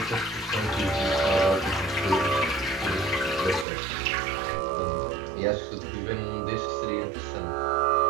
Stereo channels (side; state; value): left; drops out; at 3.7 s